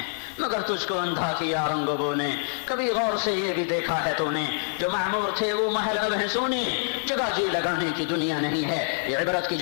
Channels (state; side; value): silent; right; 61 dB below the other